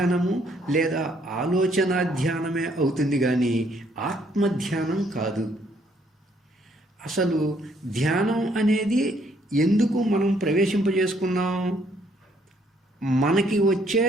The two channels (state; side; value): normal; both; correlation 0.68